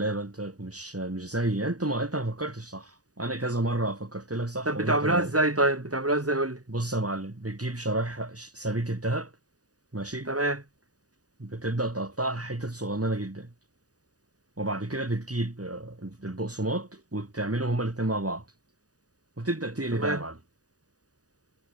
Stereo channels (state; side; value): late; left; 0.68 ms